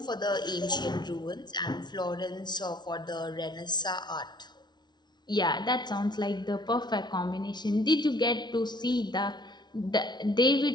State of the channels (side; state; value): right; late; 0.20 ms